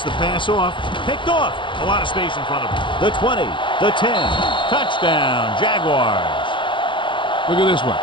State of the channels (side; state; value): right; late; 0.24 ms